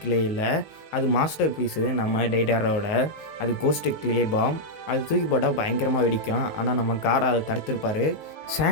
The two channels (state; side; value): late; right; 19 ms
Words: இல்லை, அது மாஸ்டர் பீஸு நம்ம டெய்டாரோட. அது கோஸ்ட்டு கிளே பாம். அது தூக்கி போட்டால் பயங்கரமாக வெடிக்கும். ஆனால் நம்ம காரா அதை தடுத்திருப்பார்.